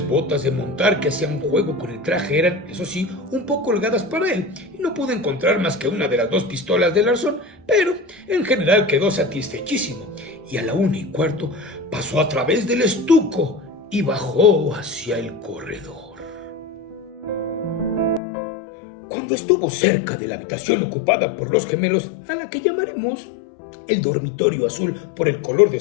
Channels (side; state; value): right; drops out; at 18.2 s